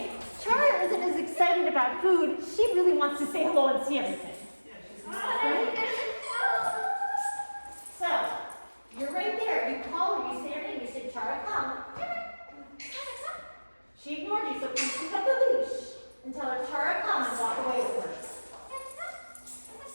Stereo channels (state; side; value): inverted; both; correlation -1.00